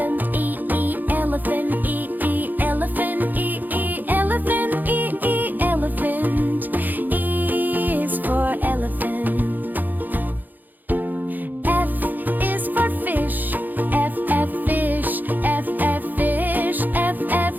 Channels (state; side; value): late; left; 0.086 ms